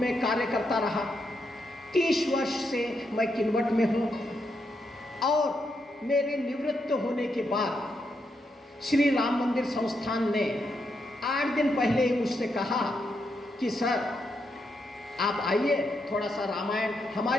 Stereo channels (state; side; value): normal; both; correlation 0.81